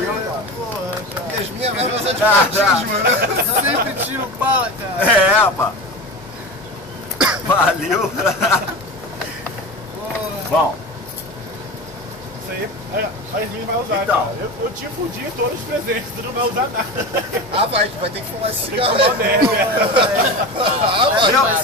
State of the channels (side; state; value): both; normal; correlation 0.28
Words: Yasmin vai fazer de patins, mano. Sempre tiro bala, cara. É, rapaz. Valeu. Bom, Isso aí a Yasmin vai usar, Então. cara. Eu te fudi todos os presentes, tu não vai usar nada. Ah, vai ter que fumar esse Tem que cigarro. tomar merda. Ah, vai. meu,